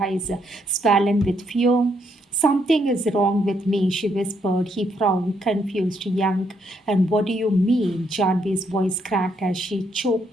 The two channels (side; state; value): both; normal; correlation 0.74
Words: swollen with fear. Something is wrong with me, she whispered. He frowned, confused, young. And what do you mean? Janvi's voice cracked as she